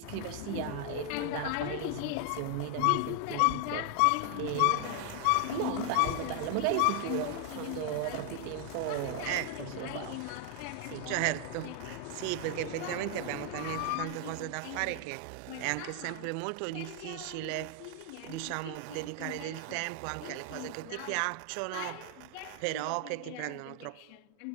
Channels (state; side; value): different; both; correlation 0.00